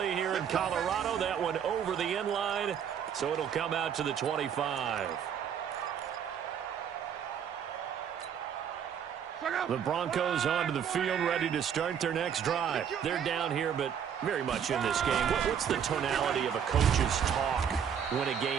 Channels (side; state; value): left; quieter; 8.2 dB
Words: here in Colorado, that one over the end line, so it'll come out to the 25. The Broncos onto the field, ready to start their next drive. They're down here, but very much in this game. What's the tonality of a coach's talk when a